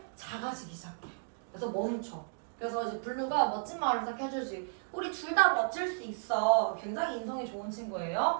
작아지기 시작해. 그래서 멈춰. 그래서 이제 블루가 멋진 말을 딱 해주지. 우리 둘 다 멋질 수 있어. 굉장히 인성이 좋은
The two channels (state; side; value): silent; left; digital silence